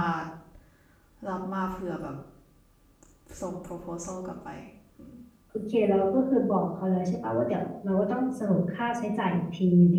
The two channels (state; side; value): identical; both; correlation 1.00